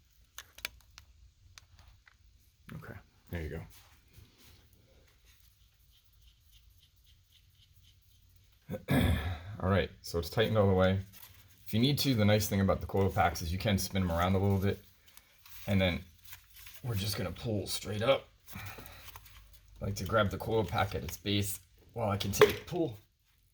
Okay, there you go. All right, so it's tightened all the way. If you need to, the nice thing about the coil packs is you can spin them around a little bit, and then we're just gonna pull straight up. I like to grab the coil pack at its base while I continue to pull,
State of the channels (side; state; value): both; identical; correlation 1.00